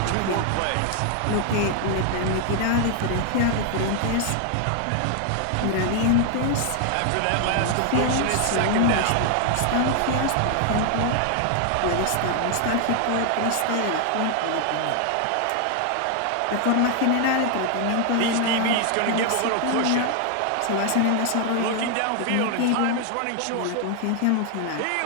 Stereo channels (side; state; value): both; different; correlation 0.00